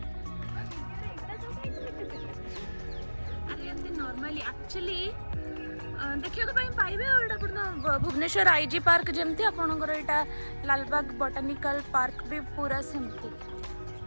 अरे एमती नॉर्मली एक्चुअली देखियो को पाइबे। और एटा अपन भुवनेश्वर आईजी पार्क जेमती आपनकर एटा लालबाग बॉटनिकल पार्क भी पूरा सेमती।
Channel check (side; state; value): both; inverted; correlation -1.00